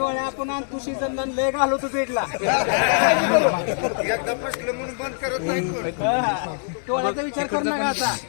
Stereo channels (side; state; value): right; silent; 63 dB below the other